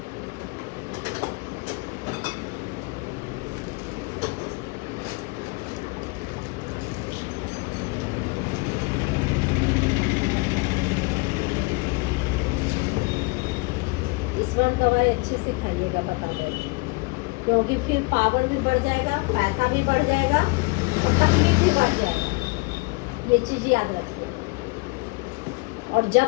इसमें दवाई अच्छे से खाइएगा, बता दें, क्योंकि फिर पावर भी बढ़ जाएगा, पैसा भी बढ़ जाएगा और तकलीफ भी बढ़ जाएगा, ये चीज याद रखिए। और जब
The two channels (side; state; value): right; quieter; 27.8 dB